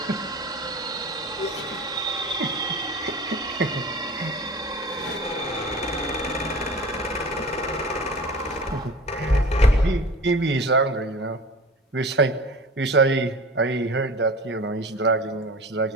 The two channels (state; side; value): normal; both; correlation 0.38